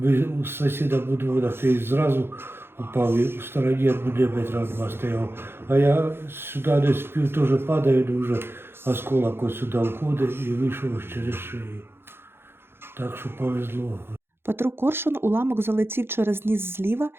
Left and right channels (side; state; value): left; late; 0.11 ms